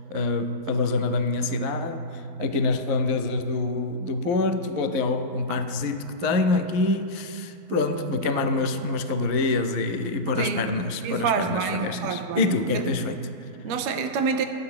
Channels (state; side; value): late; left; 11 ms